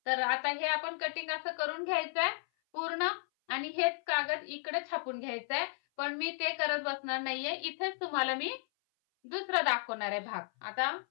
तर आता हे आपण कटिंग असं करून घ्यायचंय पूर्ण आणि हेच कागद इकडे छापून घ्यायचंय. पण मी ते करत बसणार नाहीये, इथेच तुम्हाला मी दुसरं दाखवणार आहे भाग. आता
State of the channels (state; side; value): silent; right; 55 dB below the other